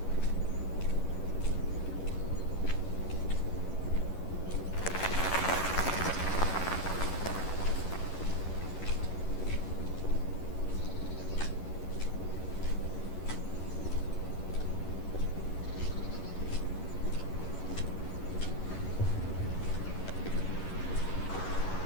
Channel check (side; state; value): right; late; 11 ms